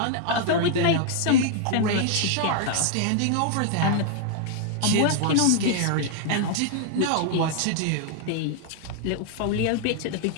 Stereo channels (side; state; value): both; different; correlation 0.00